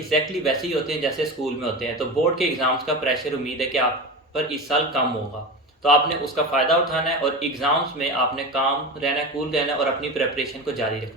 वैसे ही होते हैं जैसे स्कूल में होते हैं। तो बोर्ड के एग्ज़ाम्स का प्रेशर उम्मीद है कि आप पर इस साल कम होगा। तो आपने उसका फ़ायदा उठाना है और एग्ज़ाम्स में आपने काम रहना है, कूल रहना है और अपनी प्रिपरेशन को जारी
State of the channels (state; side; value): normal; both; correlation 0.26